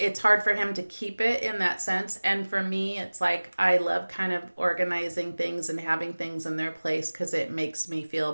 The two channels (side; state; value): both; inverted; correlation -1.00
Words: hard for him to keep it in that sense. And for me, it's like I love kind of organizing things and having things in their place, because it makes me